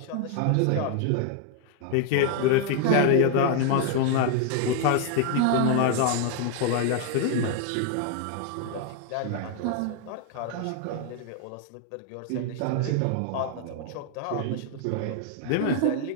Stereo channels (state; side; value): different; both; correlation 0.00